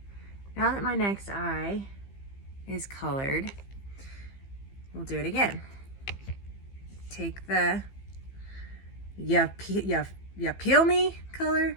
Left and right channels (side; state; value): right; late; 15 ms